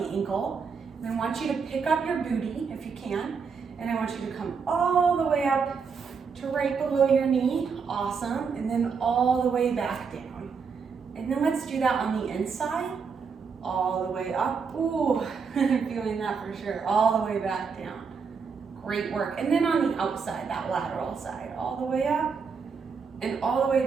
ankle, and I want you to pick up your booty if you can, and I want you to come all the way up to right below your knee. Awesome. And then all the way back down. And then let's do that on the inside, all the way up. Ooh, I'm feeling that for sure. All the way back down. Great work. And then on the outside, that lateral side, all the way up and all the way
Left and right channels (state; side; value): quieter; left; 5.6 dB